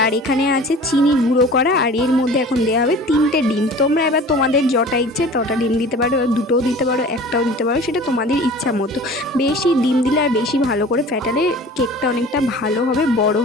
আর এখানে আছে চিনি গুঁড়ো করা, আর এর মধ্যে এখন দেওয়া হবে 3টে ডিম। তোমরা এবার তোমাদের যটা ইচ্ছে তটা ডিম দিতে পারো, দুটোও দিতে পারো, একটাও দিতে পারো, সেটা তোমাদের ইচ্ছা মতো। বেশি ডিম দিলে আর বেশি ভালো করে ফ্যাটালে কেকটা অনেকটা ভালো হবে, বড়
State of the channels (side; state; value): both; normal; correlation 0.42